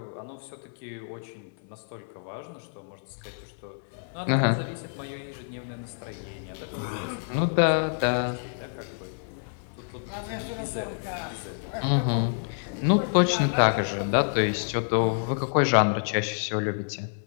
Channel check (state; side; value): silent; right; 58 dB below the other